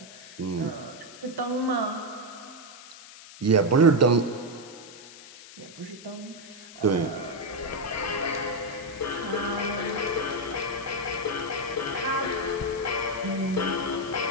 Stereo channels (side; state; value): left; noise; hiss, 17 dB below the sound